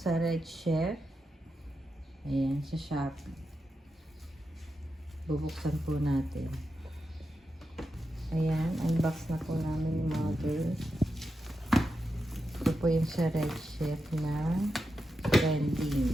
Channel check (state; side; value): normal; both; correlation 0.88